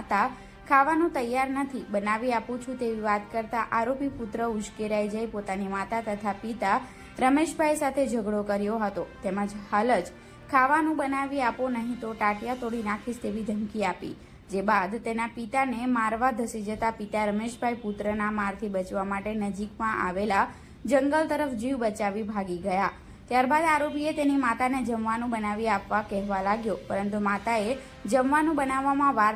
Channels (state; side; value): identical; both; correlation 1.00